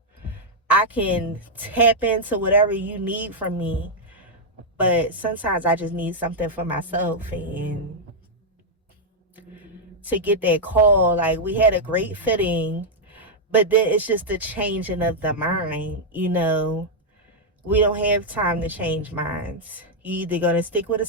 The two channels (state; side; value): normal; both; correlation -0.03